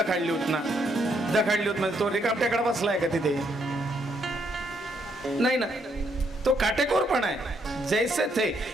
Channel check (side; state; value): both; normal; correlation 0.73